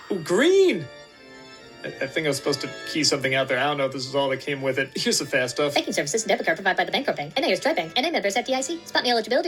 Ooh, green! I think I was supposed to key something out there. I don't know if this is all that came with it. Here's the fast stuff. Banking services and debit card provided by the Bancorp Bank. NA or Stripe Bank. NA members FDIC. SpotMe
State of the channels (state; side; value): identical; both; correlation 1.00